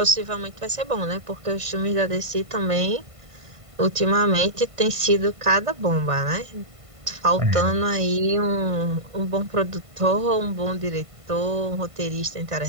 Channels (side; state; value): left; late; 1.5 ms